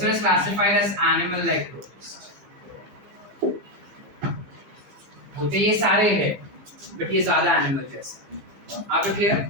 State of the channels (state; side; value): late; left; 15 ms